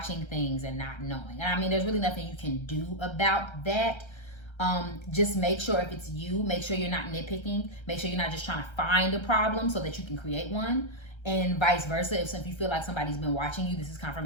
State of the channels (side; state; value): right; late; 1.3 ms